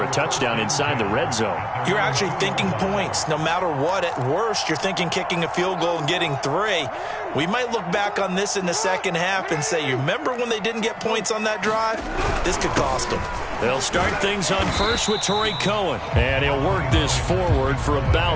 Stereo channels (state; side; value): identical; both; correlation 1.00